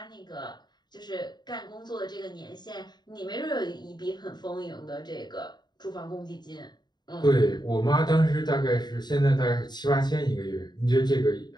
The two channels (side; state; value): right; late; 0.21 ms